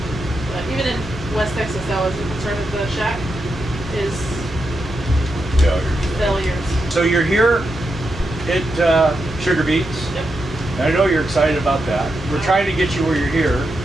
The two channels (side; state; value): both; normal; correlation 0.85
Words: But even in West Texas, that was the concern with the shack is failures. So you're here at Sugar Beets. Yep. And I know you're excited about that. We're trying to get you where you're here.